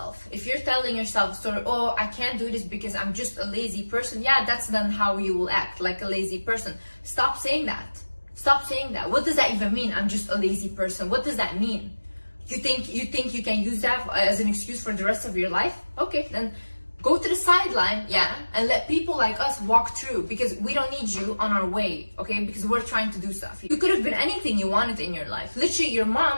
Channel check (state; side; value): inverted; both; correlation -1.00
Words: If you're telling yourself a story, oh, I can't do this because I'm just a lazy person. Yeah, that's then how you will act, like a lazy person. Stop saying that. Stop saying that. What does that even mean? I'm just a lazy person. What does that mean? You think you can use that as an excuse for the rest of your life? Okay, then go to the sideline, yeah, and let people like us walk through, because we don't need you on our way, okay? Because we're trying to do stuff. You could have been anything you wanted in your life. Literally, your